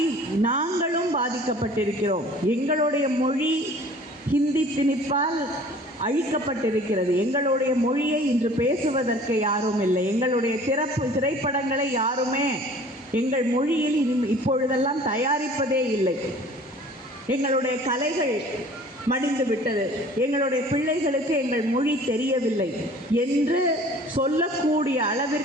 நாங்களும் பாதிக்கப்பட்டிருக்கிறோம், எங்களுடைய மொழி ஹிந்தி திணிப்பால் அழிக்கப்பட்டிருக்கிறது, எங்களுடைய மொழியை இன்று பேசுவதற்கு யாரும் இல்லை, எங்களுடைய திரைப்படங்களை யாருமே எங்கள் மொழியில் இப்பொழுதெல்லாம் தயாரிப்பதே இல்லை, எங்களுடைய கலைகள் மடிந்து விட்டது, எங்களுடைய பிள்ளைகளுக்கு எங்கள் மொழி தெரியவில்லை என்று சொல்லக்கூடிய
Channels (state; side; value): normal; both; correlation 0.48